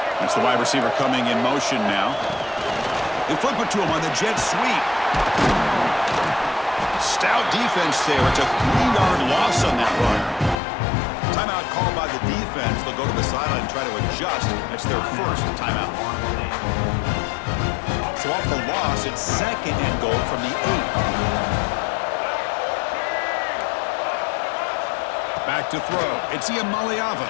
That's the wide receiver coming in motion now. They flip it to him on the jet sweep. Stout defense there. It's a 3-yard loss on that run. Timeout called by the defense. They'll go to the sideline and try to adjust. That's their first timeout. So off the loss, it's second and goal from the 8. Back to throw. It's Iamaleava.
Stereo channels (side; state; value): right; drops out; at 10.6 s